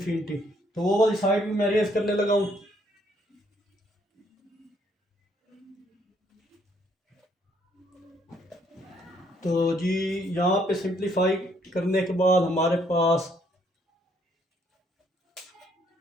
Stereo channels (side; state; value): both; normal; correlation 0.68